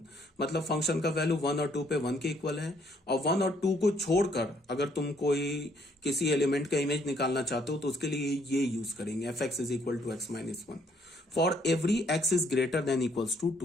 मतलब फंक्शन का वैल्यू 1 और 2 पे 1 के इक्वल है। और 1 और 2 को छोड़कर अगर तुम कोई किसी एलिमेंट का इमेज निकालना चाहते हो तो उसके लिए ये यूज करेंगे, f x is equal to x minus 1 for every x is greater than equals to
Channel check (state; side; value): normal; both; correlation 0.67